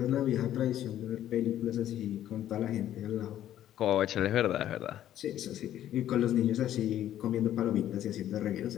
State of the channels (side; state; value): right; quieter; 11.9 dB